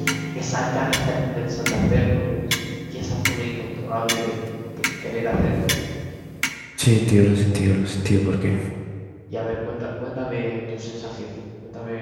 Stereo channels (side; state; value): both; identical; correlation 1.00